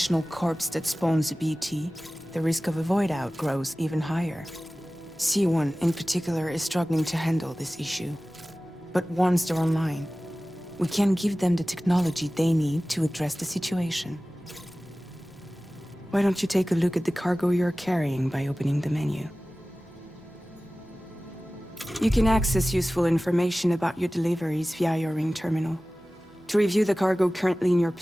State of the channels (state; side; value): normal; both; correlation 0.97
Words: corpse that spawns a BT, the risk of a void out grows even higher. C1 in particular is struggling to handle this issue. But once they're online, we can give them the technology they need to address the situation. Why don't you take a look at the cargo you're carrying by opening the menu? You can access useful information about your deliveries via your ring terminal. To review the cargo currently in your